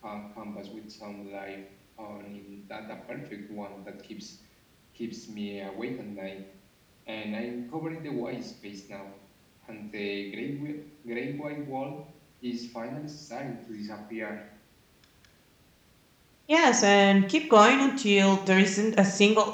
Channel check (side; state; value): both; identical; correlation 1.00